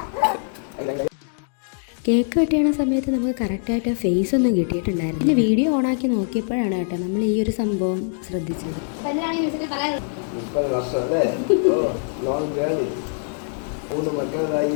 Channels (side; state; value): right; silent; 64 dB below the other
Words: കേക്ക് കട്ട് സമയത്ത് നമുക്ക് കറക്റ്റായിട്ട് ഫേസ് ഒന്നും കിട്ടിയിട്ടുണ്ടായിരുന്നു. പിന്നെ വീഡിയോ ഓണാക്കി നോക്കിയപ്പോഴാണ് കേട്ടോ നമ്മൾ ഈ ഒരു സംഭവം ശ്രദ്ധിച്ചത്. 30 വർഷം അല്ലേ? Long journey. 3 മക്കളായി